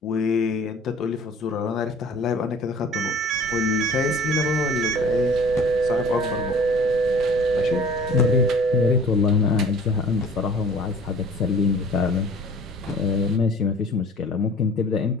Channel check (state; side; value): normal; both; correlation 0.47